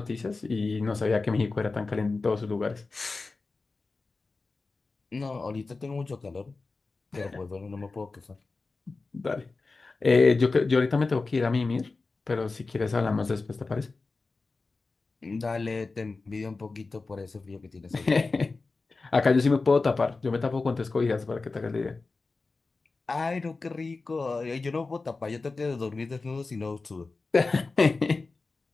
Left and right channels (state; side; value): quieter; right; 3.8 dB